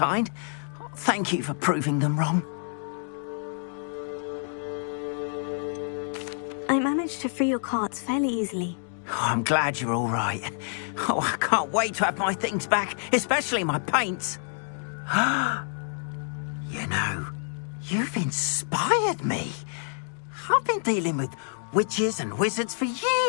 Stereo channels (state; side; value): silent; right; digital silence